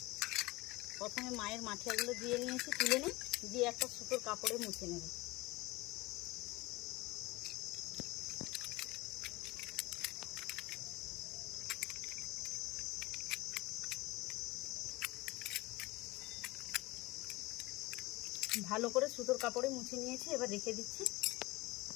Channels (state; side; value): quieter; right; 21.3 dB